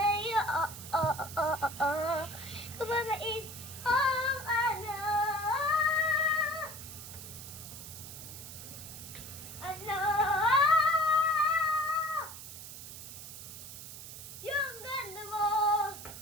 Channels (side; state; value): right; noise; hiss, 12 dB below the sound